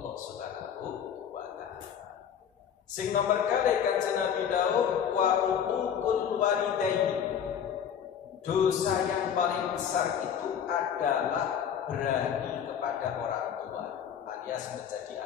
Subhanahu wa taala. Sing nomor kali kanjeng Nabi Daud wa uququl walidaini. Dosa yang paling besar itu adalah berani kepada orang tua, alias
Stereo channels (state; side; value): quieter; right; 8.5 dB